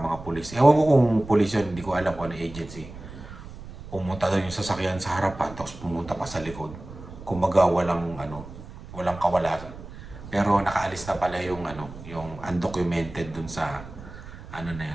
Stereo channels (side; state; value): right; noise; rumble, 14 dB below the sound